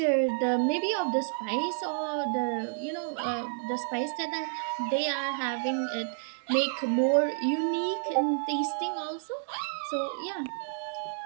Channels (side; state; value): left; silent; digital silence